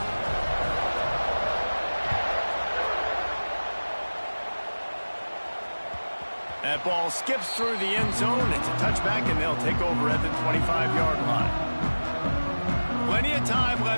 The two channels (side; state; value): both; inverted; correlation -1.00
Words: That ball skips through the end zone. It's a touchback, and they'll take over at the 25-yard line. Plenty of time